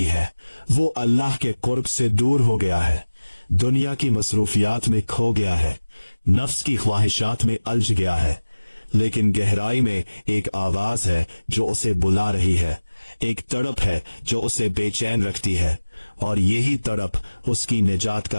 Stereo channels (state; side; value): inverted; both; correlation -1.00